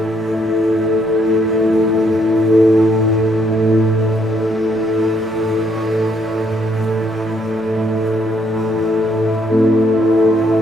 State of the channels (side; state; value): both; normal; correlation 0.71